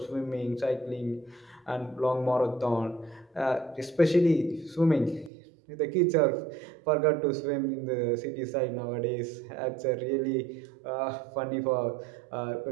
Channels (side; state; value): left; drops out; at 5.3 s